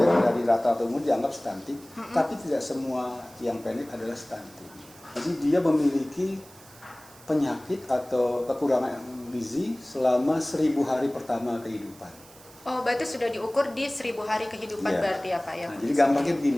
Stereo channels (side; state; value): right; noise; hiss, 22 dB below the sound